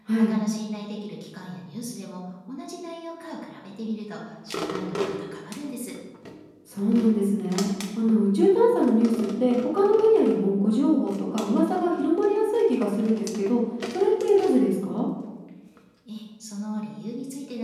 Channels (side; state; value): both; identical; correlation 1.00